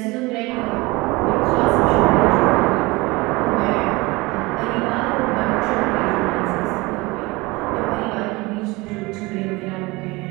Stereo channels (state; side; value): quieter; left; 23.2 dB